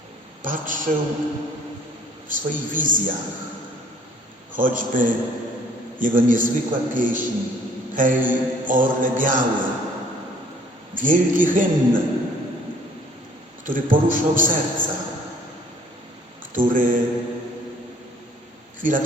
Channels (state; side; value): normal; both; correlation 0.58